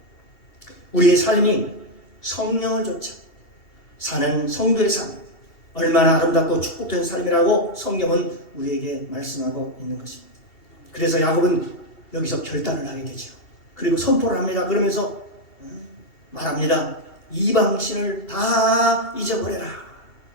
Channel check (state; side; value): late; right; 2.7 ms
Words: 우리의 삶이 성령을 좇아 사는 성도의 삶, 얼마나 아름답고 축복된 삶이라고 성경은 우리에게 말씀하고 있는 것입니다. 그래서 야곱은 여기서 결단을 하게 되죠. 그리고 선포를 합니다. 그러면서 말합니다. 이방신을 다 잊어버려라.